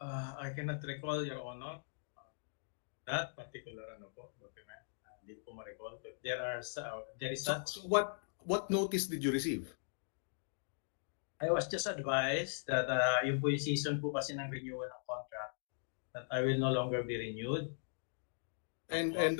I cannot recall, Your Honor, that particular document. Hindi ko ma-recall. But there is such. So what notice did you receive? I was just advised that yung po yung season po kasi ng renewal ng contract that I will no longer be renewed. And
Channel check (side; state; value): right; silent; digital silence